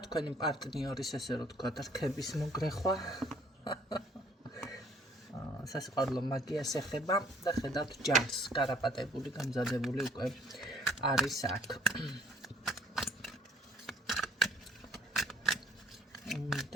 თქვენი პარტნიორის, ესე რომ ვთქვათ, რქების მოგრეხვა. სასიყვარულო მაგიას ეხება და ხედავთ ჯარს, გარაპატებული, გამზადებული უკვე არის აქ.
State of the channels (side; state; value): both; normal; correlation 0.61